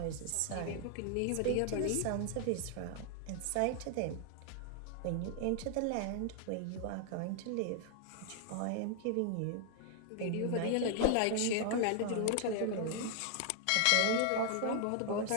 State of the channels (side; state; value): both; different; correlation 0.00